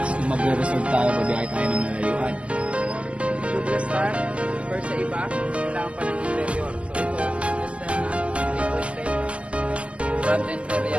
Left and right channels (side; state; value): left; late; 0.058 ms